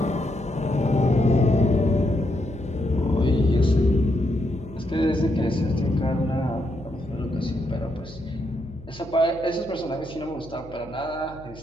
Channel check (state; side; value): noise; left; hum, 19 dB below the sound